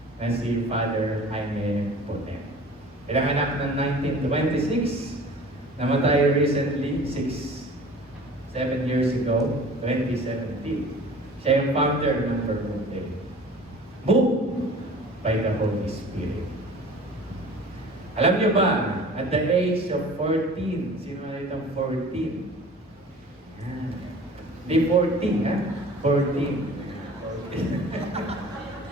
na si Father Jaime Potem. Pinanganak ng 1926, namatay recently, 7 years ago, 2017. Siya yung founder ng Potem. Moved by the Holy Spirit. Alam niyo ba, at the age of 14, sino na itong 14? Di 14, ha? 14.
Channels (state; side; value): normal; both; correlation 0.43